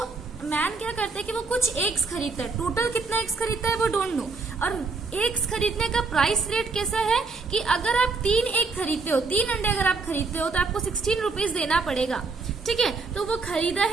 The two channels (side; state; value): left; quieter; 4.2 dB